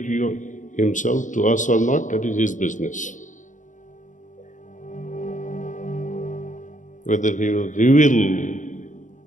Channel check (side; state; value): right; late; 0.37 ms